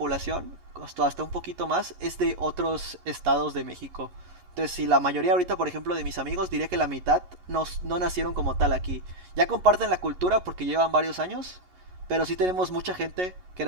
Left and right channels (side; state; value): left; late; 11 ms